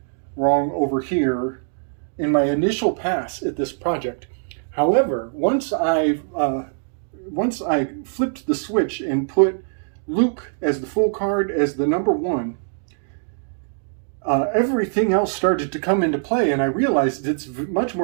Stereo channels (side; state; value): left; silent; digital silence